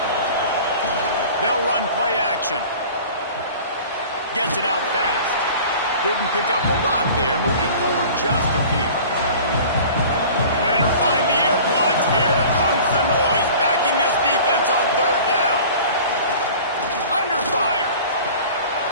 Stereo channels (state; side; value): inverted; both; correlation -0.43